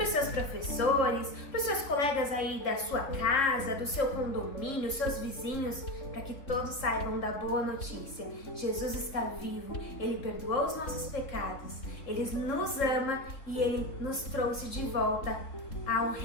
os seus professores, para os seus colegas aí da sua casa, do seu condomínio, seus vizinhos, para que todos saibam da boa notícia. Jesus está vivo, Ele perdoou os nossos pecados, Ele nos ama e Ele nos trouxe de volta ao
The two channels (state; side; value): late; right; 3.4 ms